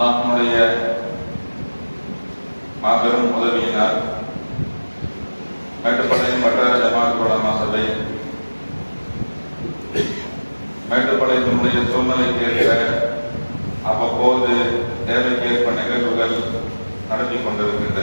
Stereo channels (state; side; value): inverted; both; correlation -1.00